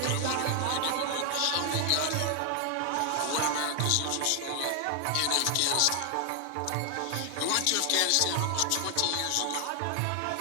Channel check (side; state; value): both; different; correlation 0.00